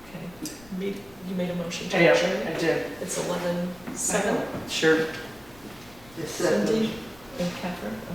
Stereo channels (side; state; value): left; noise; rumble, 24 dB below the sound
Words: you made a motion to Yeah, adjourn? I did. It's 11:07. Sure. It's second. Cindy and Catherine,